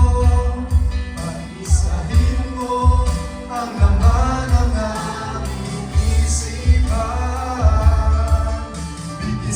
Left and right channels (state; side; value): identical; both; correlation 1.00